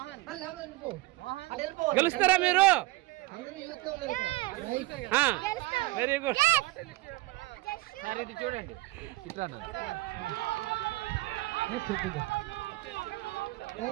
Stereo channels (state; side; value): quieter; left; 20.4 dB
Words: గెలుస్తారా మీరు? Very good. చూడండి,